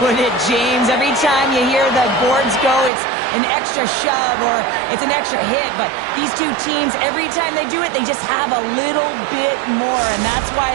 it, James. Every time you hear the boards go, it's an extra shove or it's an extra hit. But these two teams, every time they do it, they just have a little bit more. And that's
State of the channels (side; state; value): left; drops out; at 2.9 s